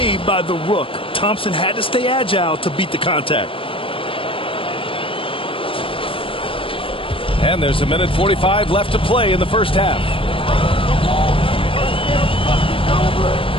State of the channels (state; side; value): late; right; 0.26 ms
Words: by the Rook. Thompson had to stay agile to beat the contact. And there's 1:45 left to play in the first half.